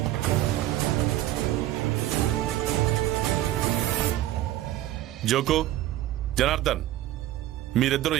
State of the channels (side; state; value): left; quieter; 14.1 dB